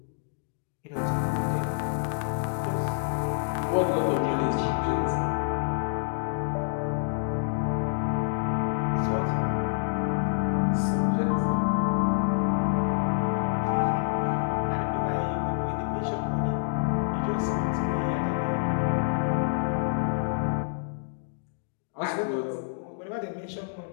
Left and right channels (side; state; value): right; silent; digital silence